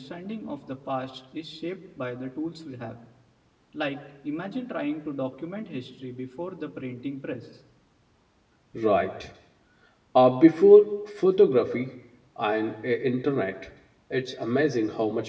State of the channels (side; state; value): both; identical; correlation 1.00